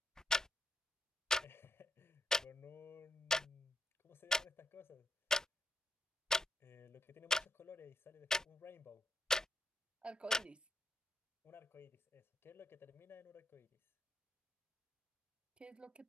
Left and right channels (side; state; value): both; normal; correlation 0.78